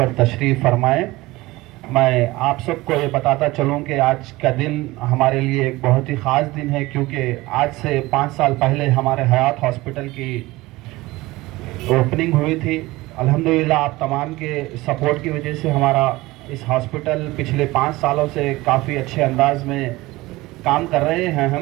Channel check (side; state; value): left; quieter; 19.9 dB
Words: تشریف فرمائیں. میں آپ سب کو یہ بتاتا چلوں کہ آج کا دن ہمارے لیے ایک بہت ہی خاص دن ہے، کیونکہ آج سے 5 سال پہلے ہمارے حیات ہاسپٹل کی اوپننگ ہوئی تھی. الحمدللہ آپ تمام کے سپورٹ کی وجہ سے ہمارا اس ہاسپٹل پچھلے 5 سالوں سے کافی اچھے انداز میں کام کر رہے ہیں